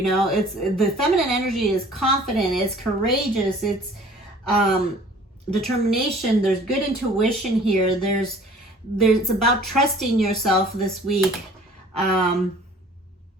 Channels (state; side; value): normal; both; correlation 0.51